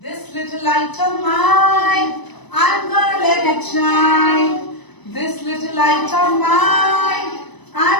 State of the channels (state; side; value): late; right; 1.0 ms